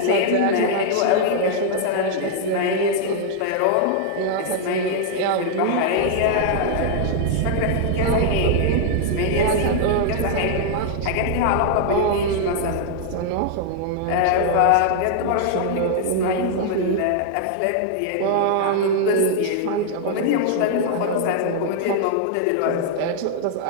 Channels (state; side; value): different; both; correlation -0.01